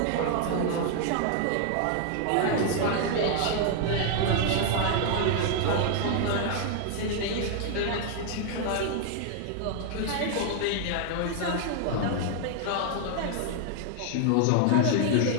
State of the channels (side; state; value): both; different; correlation 0.00